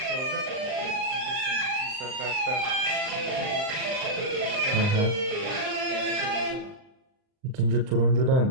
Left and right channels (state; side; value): late; left; 39 ms